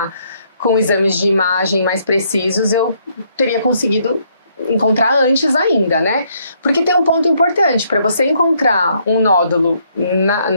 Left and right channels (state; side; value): inverted; both; correlation -0.70